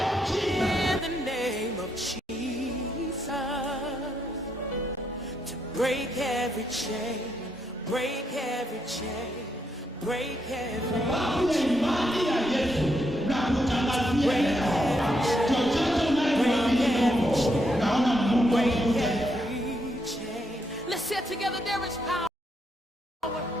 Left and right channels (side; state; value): both; normal; correlation 0.78